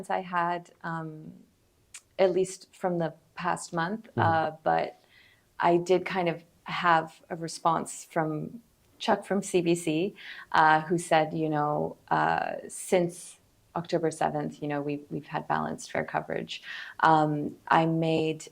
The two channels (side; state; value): both; identical; correlation 1.00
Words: I had, at least from the past month. But I did kind of have a response from Chuck from CBC, who said, since October 7th, we've had balanced, fair coverage. I made